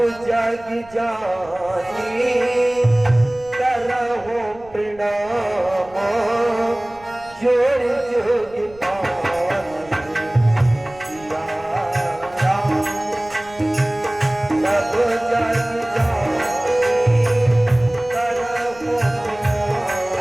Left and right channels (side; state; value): right; noise; rumble, 23 dB below the sound